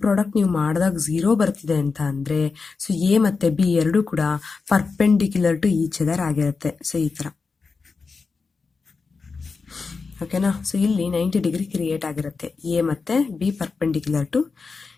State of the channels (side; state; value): right; quieter; 4.6 dB